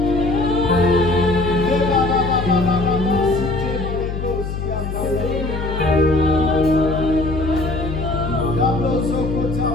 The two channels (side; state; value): left; noise; hum, 5 dB below the sound